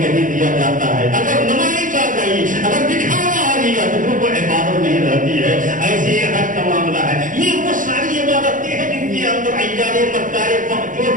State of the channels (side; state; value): left; late; 0.38 ms